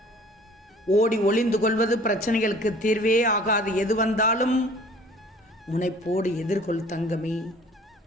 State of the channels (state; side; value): normal; both; correlation 0.50